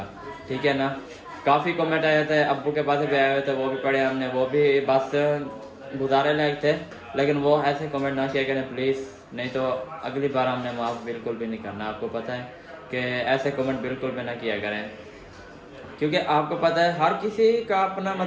ठीक है ना? काफ़ी कमेंट आए थे, अब्बू के पास भी आए हुए थे, वो भी पढ़े हमने, वो भी बस गुजारे लायक थे। लेकिन वो ऐसे कमेंट ना किया करें प्लीज़, नहीं तो अगली बार हमने माफ़ बिल्कुल भी नहीं करना। आपको पता है कि ऐसे कमेंट बिल्कुल भी ना किया करें क्योंकि आपको पता है हर किसी का अपना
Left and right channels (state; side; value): identical; both; correlation 1.00